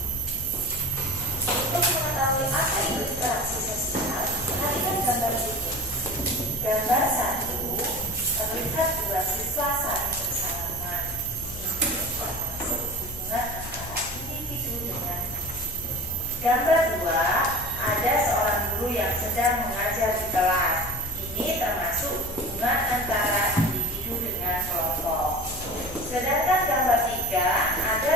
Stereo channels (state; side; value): noise; left; rumble, 13 dB below the sound